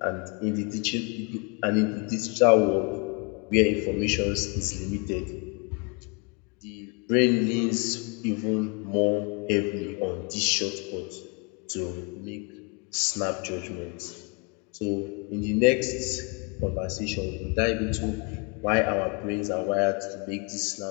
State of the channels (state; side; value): quieter; right; 32.6 dB